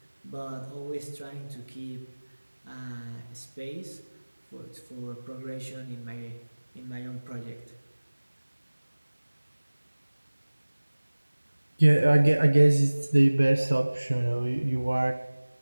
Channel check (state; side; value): inverted; both; correlation -1.00